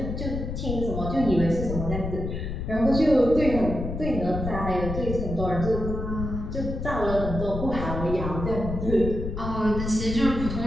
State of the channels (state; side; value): noise; left; rumble, 5 dB below the sound